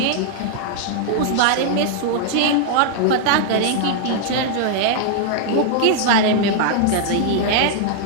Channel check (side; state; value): both; different; correlation -0.01